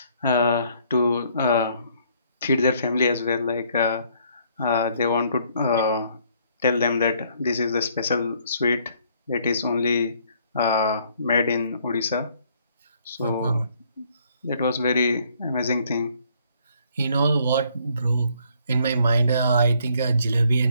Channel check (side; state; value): both; inverted; correlation -0.65